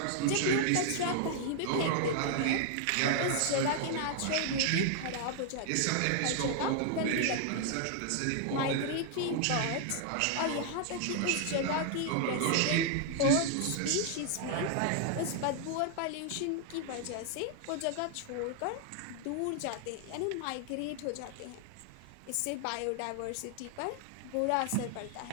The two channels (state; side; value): different; both; correlation 0.00